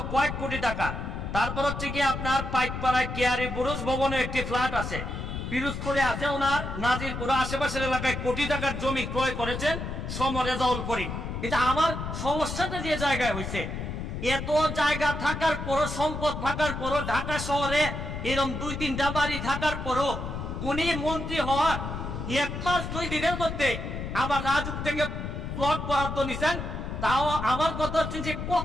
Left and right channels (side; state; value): left; noise; rumble, 5 dB below the sound